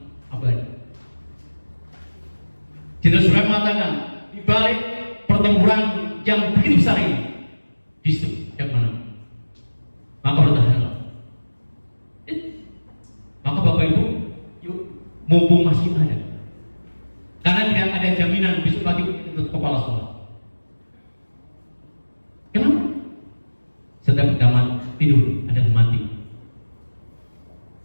abadi. Jenderal Sudirman mengatakan di balik pertempuran yang begitu besar ini, di situ yang mana? Maka bertahanlah. Maka Bapak Ibu, yuk, mumpung masih ada, karena tidak ada jaminan besok pagi untuk kepala sekolah. Kenapa? Setiap kita tidur ada mati.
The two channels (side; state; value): both; inverted; correlation -1.00